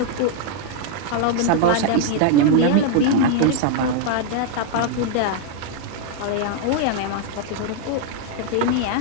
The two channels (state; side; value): different; both; correlation 0.00